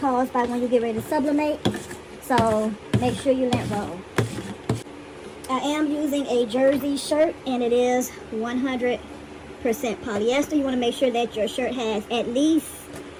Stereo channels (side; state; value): both; identical; correlation 1.00